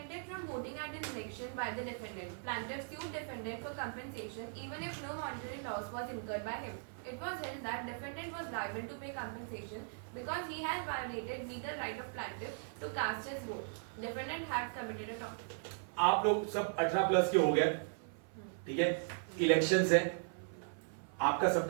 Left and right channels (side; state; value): left; silent; 52 dB below the other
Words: from voting at an election by the defendant. Plaintiff sued defendant for compensation even if no monetary loss was incurred by him. It was held that defendant was liable to pay compensation because he had violated legal right of plaintiff to cast his vote. Defendant had committed a tort. आप लोग सब 18 plus के हो गए, ठीक है। Elections है, आपका